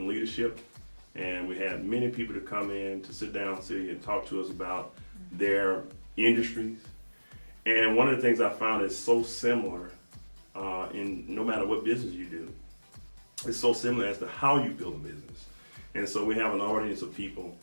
leadership, and we had many people to come in to sit down, Celia, and talk to us about their industries. And one of the things I found is so similar in no matter what business you do. It's so similar as to how you build a business. And so we have an audience of people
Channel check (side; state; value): both; inverted; correlation -1.00